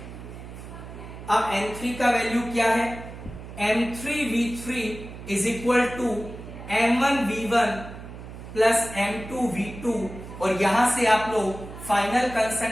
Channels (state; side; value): noise; right; hum, 13 dB below the sound